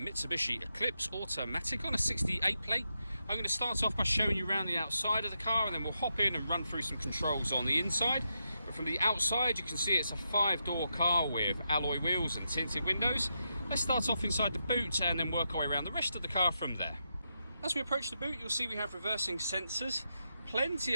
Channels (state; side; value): inverted; both; correlation -0.84